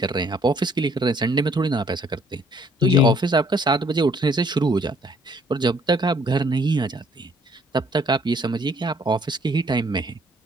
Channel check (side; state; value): both; normal; correlation 0.62